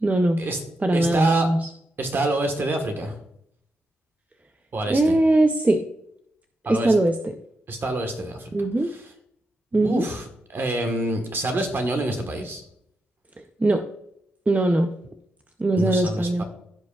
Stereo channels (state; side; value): normal; both; correlation 0.86